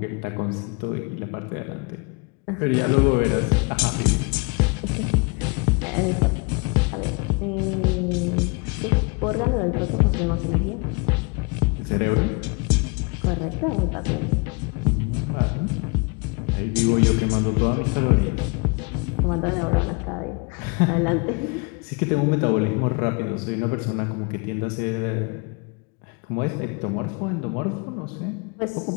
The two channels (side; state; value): right; quieter; 31.1 dB